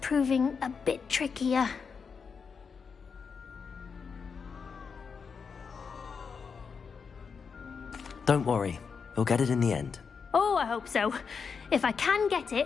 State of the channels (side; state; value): right; quieter; 5.8 dB